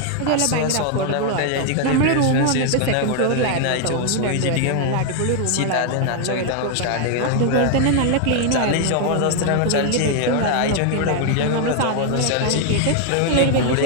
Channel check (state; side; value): different; both; correlation 0.00